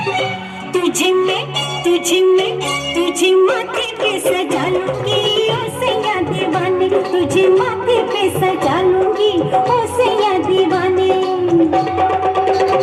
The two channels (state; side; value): identical; both; correlation 1.00